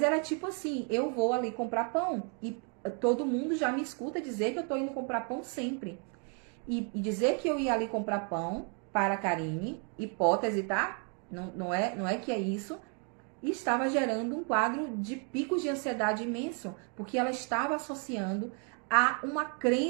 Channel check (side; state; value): left; quieter; 39.5 dB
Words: era tipo assim, eu vou ali comprar pão e todo mundo já me escuta dizer que eu tô indo comprar pão sempre. E dizer que eu ia ali comprar pão para a Karine, hipótese, tá? Não é que é isso. E estava gerando um quadro de picos de ansiedade imenso, porque ela estava associando a uma